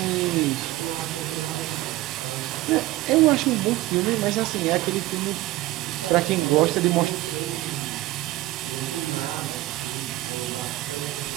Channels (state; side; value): quieter; left; 17.4 dB